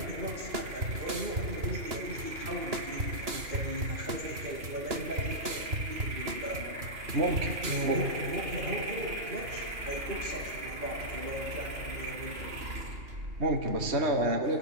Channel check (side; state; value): left; late; 2.9 ms